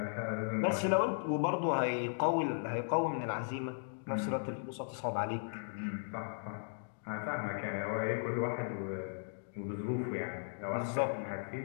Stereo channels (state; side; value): silent; right; digital silence